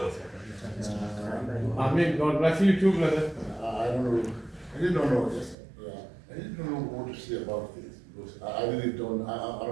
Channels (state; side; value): drops out; left; at 5.6 s